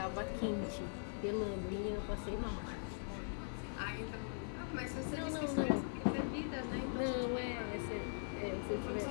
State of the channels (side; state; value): right; silent; 50 dB below the other